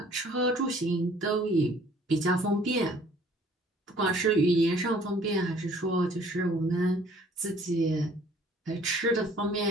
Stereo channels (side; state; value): both; normal; correlation 0.56